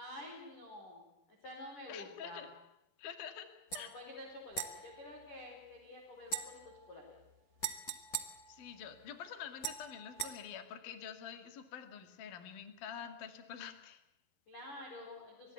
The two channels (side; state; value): right; late; 11 ms